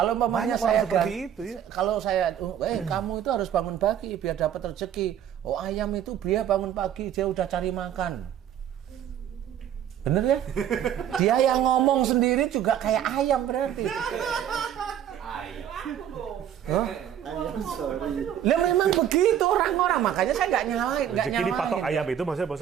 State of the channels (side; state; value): left; quieter; 10.1 dB